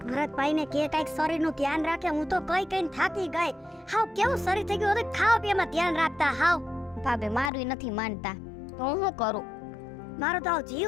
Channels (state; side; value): drops out; right; at 7.5 s